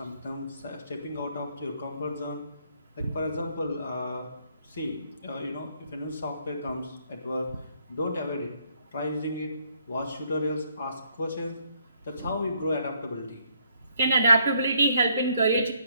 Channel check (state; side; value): inverted; both; correlation -0.70